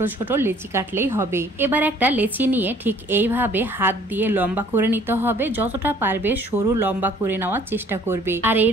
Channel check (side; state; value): both; normal; correlation 0.57